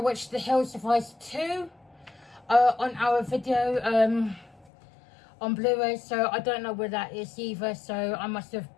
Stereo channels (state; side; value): drops out; right; at 4.7 s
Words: watched The Hills of Ice 2 on our video on Blu-ray, so I don't know where that is either, so I must have